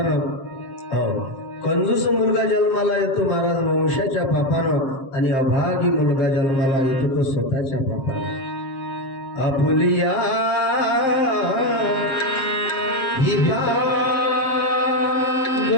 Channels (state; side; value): late; right; 7.5 ms